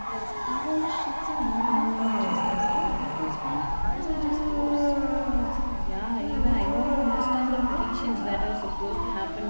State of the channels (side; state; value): both; inverted; correlation -1.00